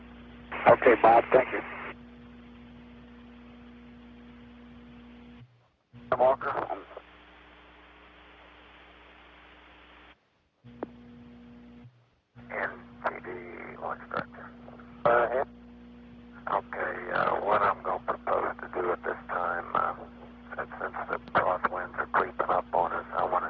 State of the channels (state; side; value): identical; both; correlation 1.00